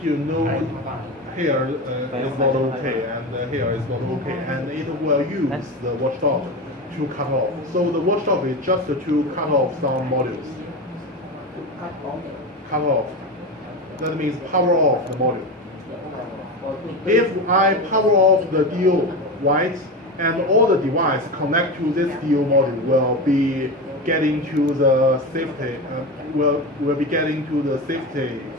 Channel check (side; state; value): both; normal; correlation 0.22